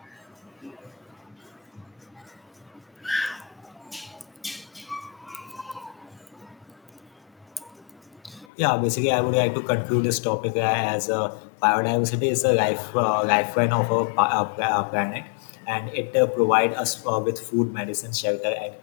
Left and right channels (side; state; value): right; drops out; at 8.5 s